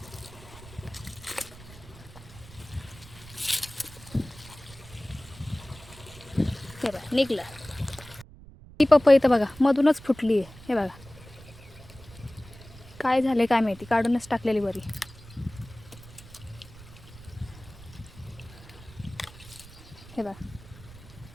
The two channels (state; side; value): noise; right; rumble, 19 dB below the sound